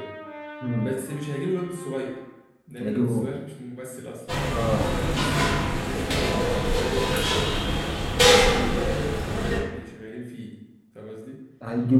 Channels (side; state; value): both; identical; correlation 1.00